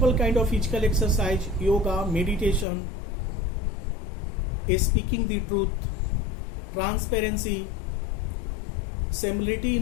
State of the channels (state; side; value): drops out; right; at 2.7 s